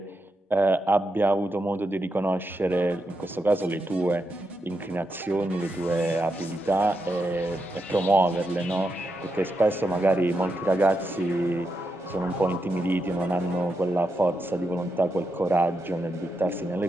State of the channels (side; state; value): both; normal; correlation 0.85